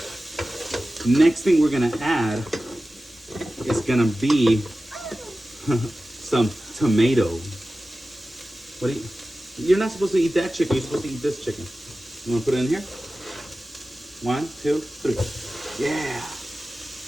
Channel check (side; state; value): both; normal; correlation 0.95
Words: Next thing we're going to add is going to be some tomato. What do you... You're not supposed to eat that chicken. You're supposed to eat this chicken. You want to put it in here? 1, 2, 3. Yeah.